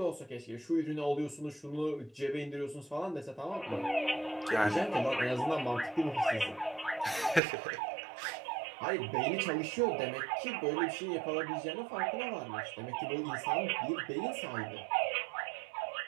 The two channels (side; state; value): left; drops out; at 7.4 s